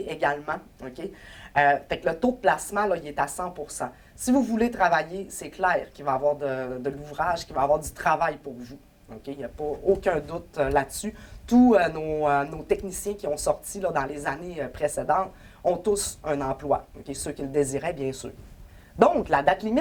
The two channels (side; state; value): both; identical; correlation 1.00